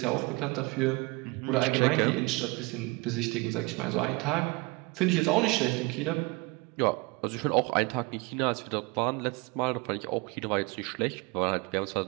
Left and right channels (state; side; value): quieter; left; 25.9 dB